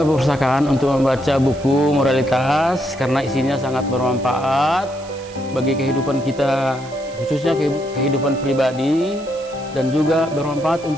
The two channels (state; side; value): noise; right; hiss, 20 dB below the sound